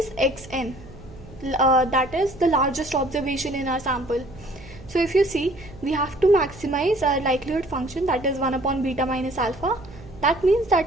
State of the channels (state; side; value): noise; right; hum, 19 dB below the sound